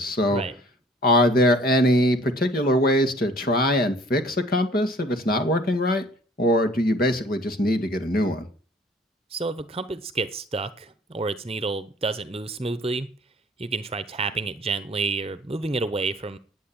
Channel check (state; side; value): normal; both; correlation 0.53